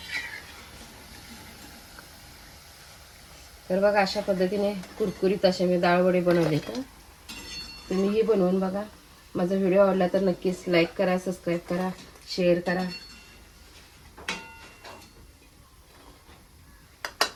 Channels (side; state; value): both; identical; correlation 1.00